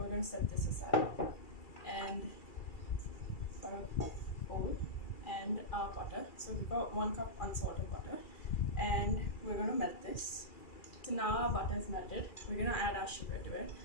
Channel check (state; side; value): late; right; 2.4 ms